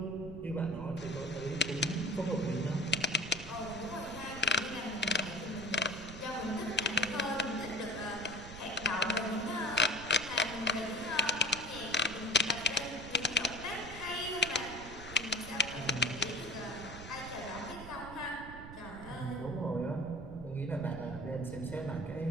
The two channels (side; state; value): right; noise; rumble, 12 dB below the sound